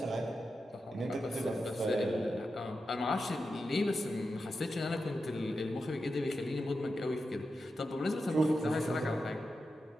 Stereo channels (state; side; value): normal; both; correlation 0.89